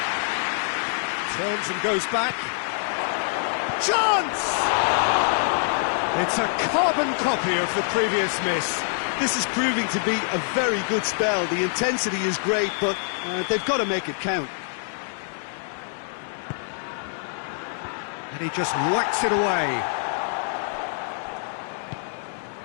Turns and goes back. Chance! It's a carbon copy of the previous miss. This is proving to be a very good spell. The intensity is great, but they've got to make it count. And he just whacks it away.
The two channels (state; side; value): silent; right; 62 dB below the other